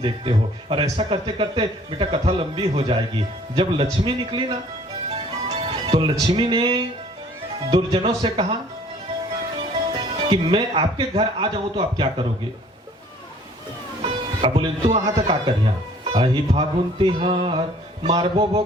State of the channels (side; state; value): both; normal; correlation 0.55